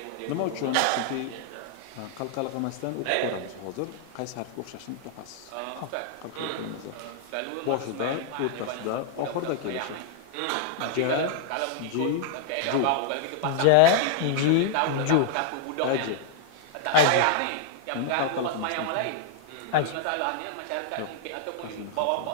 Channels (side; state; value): both; different; correlation -0.01